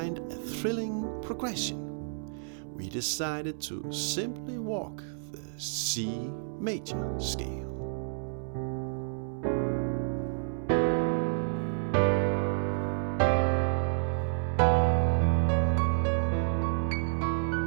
a thrilling progression. We decided to simply walk the C major scale.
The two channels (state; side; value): silent; left; 58 dB below the other